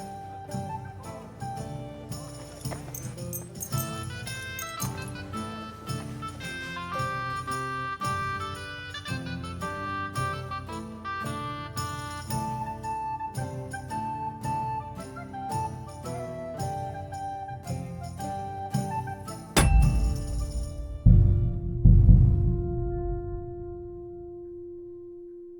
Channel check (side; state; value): both; identical; correlation 1.00